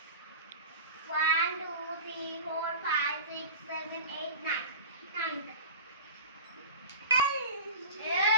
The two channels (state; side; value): inverted; both; correlation -0.33